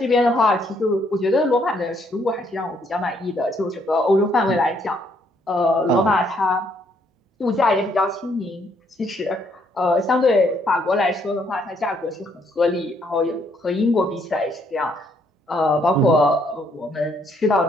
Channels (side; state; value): both; normal; correlation 0.70